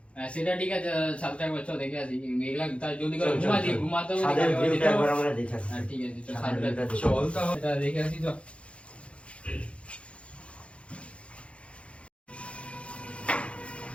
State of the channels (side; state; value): right; late; 0.061 ms